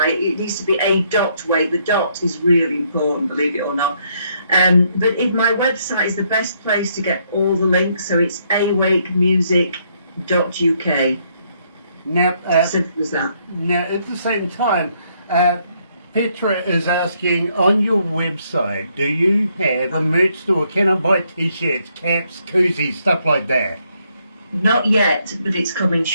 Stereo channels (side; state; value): both; inverted; correlation -0.72